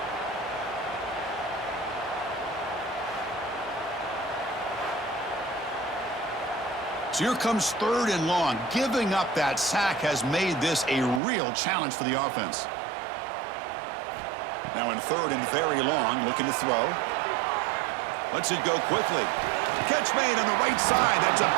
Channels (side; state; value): left; drops out; at 11.2 s